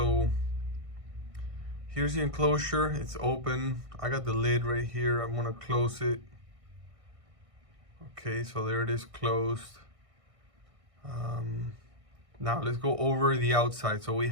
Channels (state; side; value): late; left; 1.6 ms